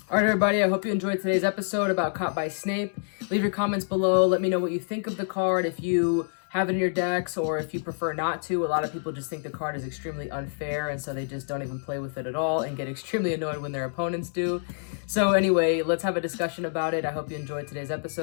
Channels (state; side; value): silent; right; digital silence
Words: All right, everybody, I hope you enjoyed today's episode about Caught by Snape. Leave your comments below. Let me know what you think of the card, if you have it in your decks or if you prefer not to. A lot of people just think the card is extremely unfair, and so they just don't even play with it at all and get extremely annoyed when their opponents do. So anyway, let's have a discussion about it. I hope you enjoyed today's